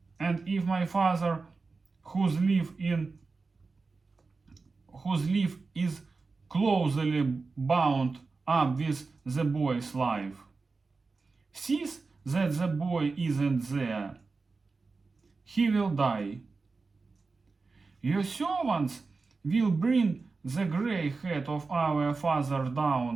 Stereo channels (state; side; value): quieter; left; 4.1 dB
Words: and if my father whose life is closely bound up with the boy's life, sees that the boy isn't there, he will die. Your servants will bring the gray head of our father